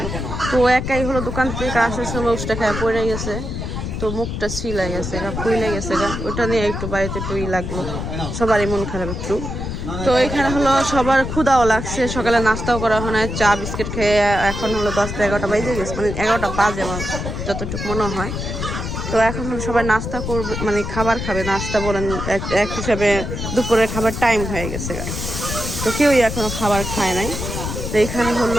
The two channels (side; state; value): left; noise; rumble, 5 dB below the sound